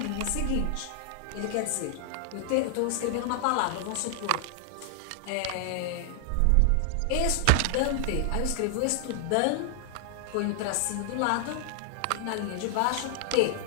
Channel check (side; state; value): both; different; correlation 0.00